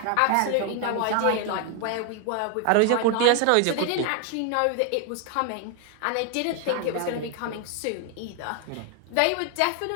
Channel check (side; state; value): both; different; correlation 0.00